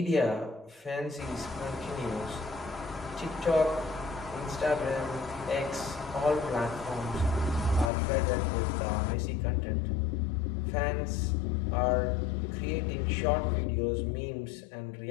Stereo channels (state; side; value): drops out; right; at 7.9 s